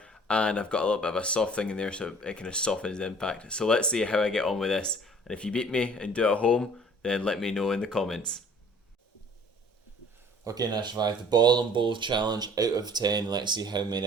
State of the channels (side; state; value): both; normal; correlation 0.52